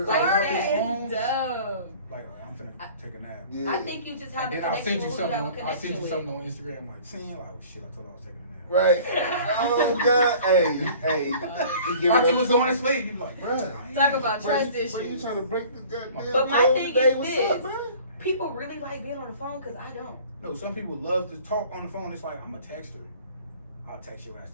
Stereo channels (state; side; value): inverted; both; correlation -0.47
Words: off that his is phone, dumb. like I'm finna take a nap. Yeah. I think you just have And a then I'll connection send you with who you have a something. I'll send connection you with. something on Instagram, like saying, like, oh shit, I told her I was taking a nap. Right. Oh God. Hey. You give Thought it you up. was going to sleep. You like, bruh. Talk about Bruh, trust Bro, you issues. trying to break the goddamn But my code thing today? is What's this. up, bro? People really like being on the phone because I don't. No, some people love to talk on the phone. It's like, I'm a texter. I'll text your ass